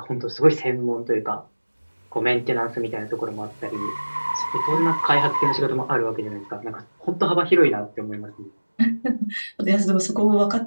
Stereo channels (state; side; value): inverted; both; correlation -1.00